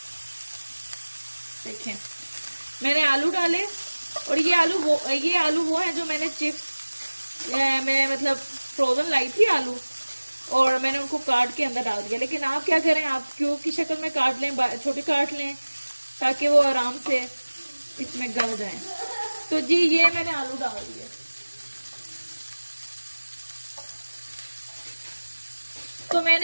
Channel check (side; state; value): both; inverted; correlation -1.00